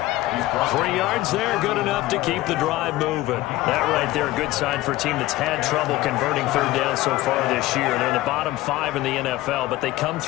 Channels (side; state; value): right; quieter; 17.4 dB